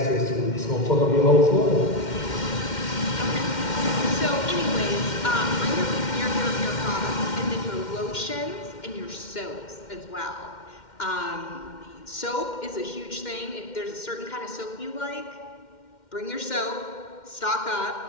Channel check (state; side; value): late; right; 2.1 ms